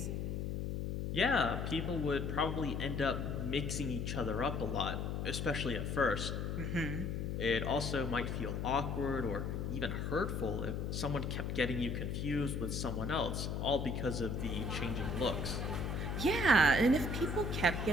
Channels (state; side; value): noise; left; hum, 2 dB below the sound